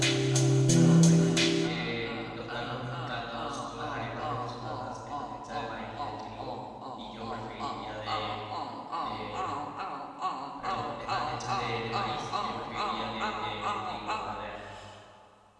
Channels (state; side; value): identical; both; correlation 1.00